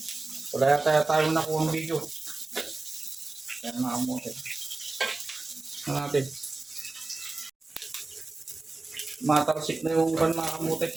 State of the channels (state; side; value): quieter; left; 3.3 dB